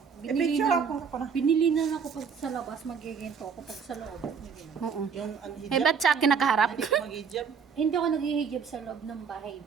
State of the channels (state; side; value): quieter; left; 6.3 dB